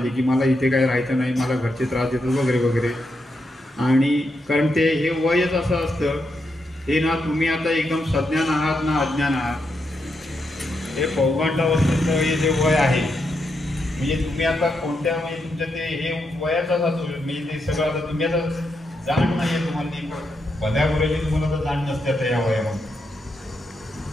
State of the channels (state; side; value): normal; both; correlation 0.83